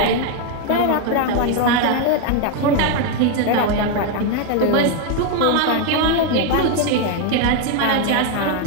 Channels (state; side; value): different; both; correlation 0.01